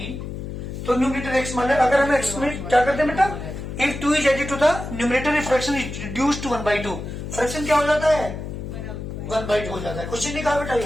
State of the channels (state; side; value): noise; left; hum, 7 dB below the sound